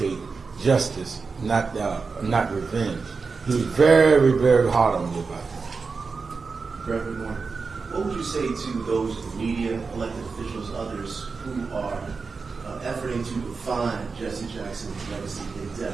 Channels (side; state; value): left; quieter; 4.7 dB